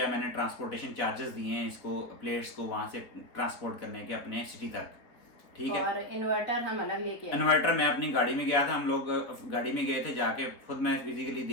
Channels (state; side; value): late; right; 3.6 ms